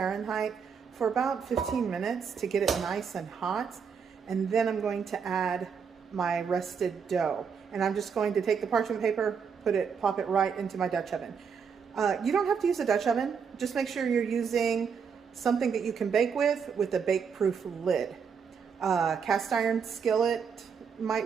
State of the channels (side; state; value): left; quieter; 6.5 dB